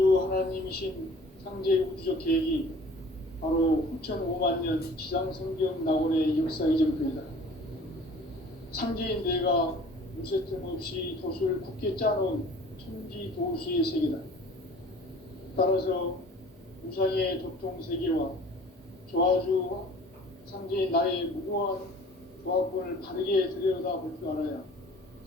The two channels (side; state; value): both; normal; correlation 0.48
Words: 하나님이신 상제 우주적 계획이 바로 후천 5만년 지상성경 낙원의 역사 이정표이다. 상제인 내가 무쇠틈 없이 도수를 굳게 짜놓은 천지도수의 세계다. 따라서 우상의 도통세계와 조화주 상제인 나의 무고한 조합권을 바르게 들여다볼 줄 알아야